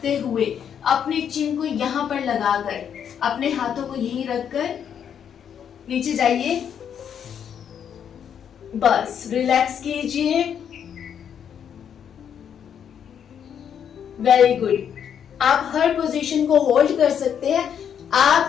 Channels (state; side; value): quieter; right; 8.4 dB